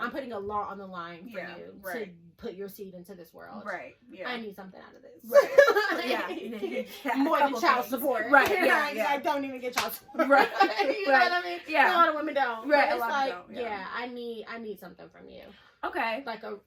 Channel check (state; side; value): identical; both; correlation 1.00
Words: putting a lot on the line for you to put your seed into this world. Right. Yeah, I need something out of this. Right. More than child support. Right. Yeah. I don't even get child support. Right. You know what I mean? Yeah. A lot of women don't. Right. It's like, I need something from you. Okay. Like a